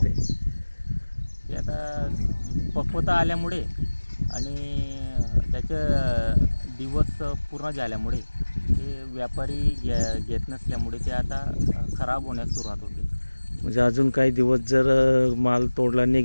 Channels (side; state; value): both; inverted; correlation -1.00